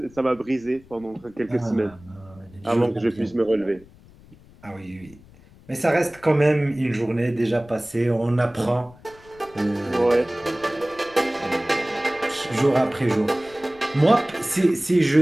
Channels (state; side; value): noise; left; rumble, 24 dB below the sound